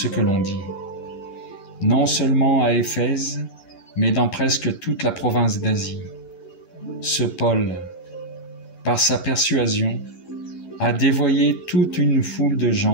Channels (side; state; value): right; late; 11 ms